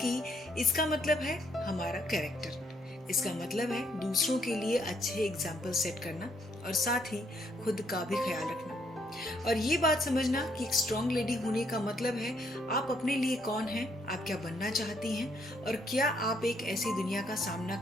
इसका मतलब है हमारा कैरेक्टर। इसका मतलब है दूसरों के लिए अच्छे एग्जाम्पल सेट करना और साथ ही खुद का भी ख्याल रखना। और ये बात समझना कि एक स्ट्रॉन्ग लेडी होने का मतलब है आप अपने लिए कौन हैं, आप क्या बनना चाहती हैं, और क्या आप एक ऐसी दुनिया का सामना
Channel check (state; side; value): normal; both; correlation 0.71